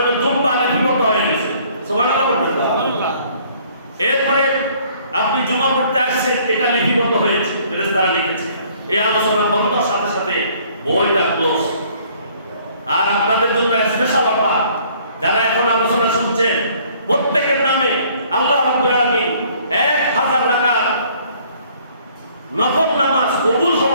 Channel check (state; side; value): inverted; both; correlation -0.59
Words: দুম্বা লিপিবদ্ধ হয়ে গেছে, সুবহানাল্লাহ বলেন। এরপরে আপনি জুমা পড়তে আসছেন, এটা লিপিবদ্ধ হয়েছে, ফেরেশতারা লিখেছে। এই আলোচনা বন্ধর সাথে সাথে বইটা ক্লোজ। আর আপনাদের জন্য স্পেশাল অফার, যারা এখন আলোচনা শুনছেন প্রত্যেকের নামে আল্লাহ রাব্বুল আলামিন 1000 রাকাত নফল নামাজ, কবুল